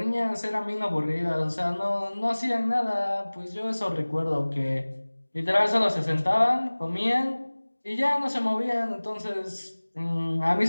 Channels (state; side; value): inverted; both; correlation -1.00